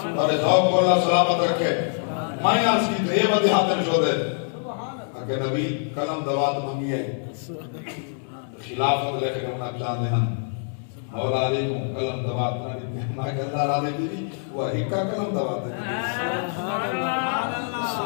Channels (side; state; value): right; silent; 62 dB below the other